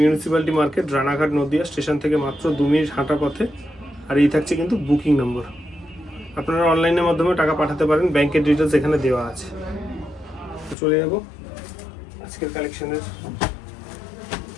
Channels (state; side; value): drops out; right; at 10.8 s